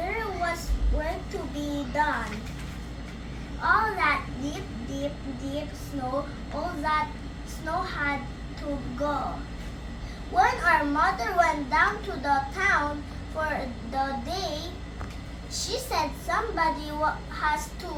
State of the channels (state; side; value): identical; both; correlation 1.00